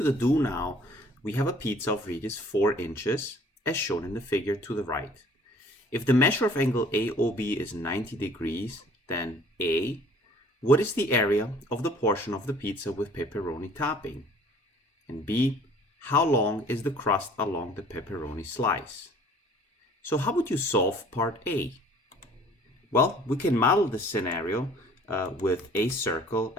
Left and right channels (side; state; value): both; normal; correlation 0.53